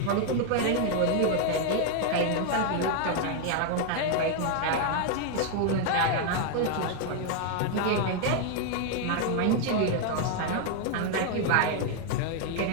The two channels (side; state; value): both; different; correlation 0.00